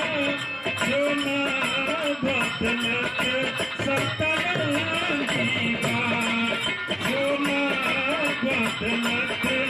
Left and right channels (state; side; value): identical; both; correlation 1.00